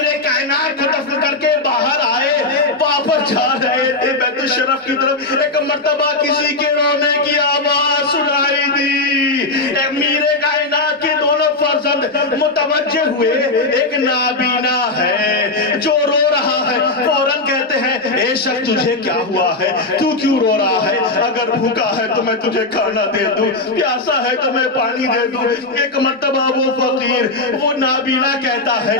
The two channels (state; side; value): quieter; right; 3.1 dB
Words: کائنات کو دفن کر کے باہر آئے، واپس جا رہے تھے بیت الشرف کی طرف، ایک مرتبہ کسی کے رونے کی آواز سنائی دی۔ امیر کائنات کے دونوں فرزند متوجہ ہوئے، ایک نابینا ہے جو رو رہا ہے، فوراً کہتے ہیں اے شخص تجھے کیا ہوا ہے، تو کیوں رو رہا ہے؟ اگر بھوکا ہے تو میں تجھے کھانا دے دوں، پیاسا ہے تو میں پانی دے دوں۔ ایک مرتبہ وہ فقیر، وہ نابینا کہتا ہے